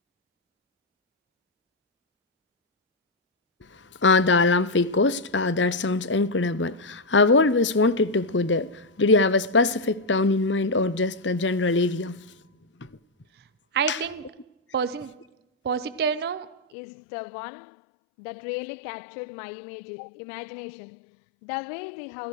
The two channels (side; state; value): right; drops out; at 16.6 s